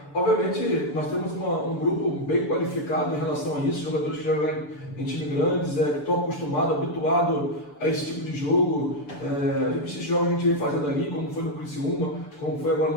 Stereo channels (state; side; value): late; right; 6.9 ms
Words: obviamente, nós temos um grupo bem qualificado em relação a isso, jogadores que jogam em times grandes, que estão acostumados, habituados a esse tipo de jogo. Esses jogos a gente vem fazendo ali, como foi no Criciúma, como foi agora